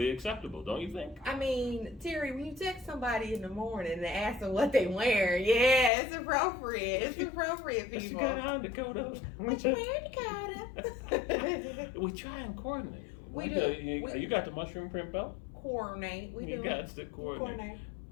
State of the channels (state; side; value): drops out; right; at 5.9 s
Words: acceptable, don't you think? I mean, Terry, when you text somebody in the morning and ask them what they wear, yeah, it's appropriate. It's appropriate, What you people. got on, Dakota? What you wearing, Dakota? We try and coordinate. We Like, do. you got the mushroom print belt? Coordinate. We You do. got to coordinate.